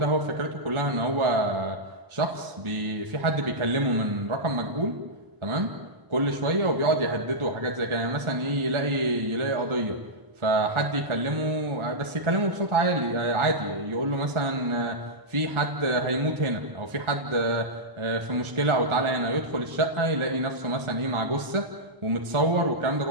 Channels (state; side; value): late; left; 1.4 ms